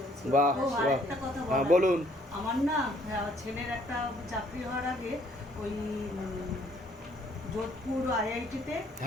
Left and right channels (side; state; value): both; normal; correlation 0.63